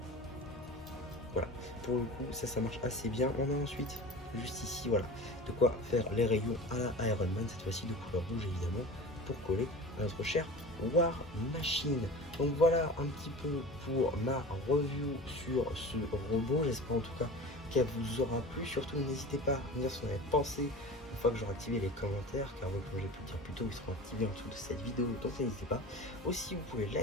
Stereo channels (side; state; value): both; normal; correlation 0.35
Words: Voilà, pour le coup, ça marche assez bien. On a ensuite, juste ici, voilà, de quoi faire les rayons à la Iron Man, cette fois-ci de couleur rouge évidemment, pour coller à notre cher War Machine. Donc voilà un petit peu pour ma review sur ce robot. J'espère en tout cas qu'elle vous aura plu. Surtout, n'hésitez pas à me dire ce que vous en avez pensé une fois que j'aurai activé les commentaires, car comme j'ai pu le dire plus tôt, ils seront activés en dessous de cette vidéo, donc n'hésitez pas. Aussi, vous pouvez